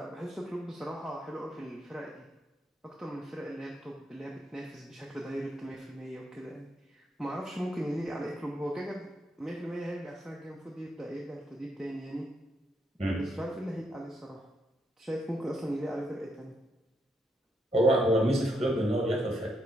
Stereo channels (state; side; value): normal; both; correlation 0.77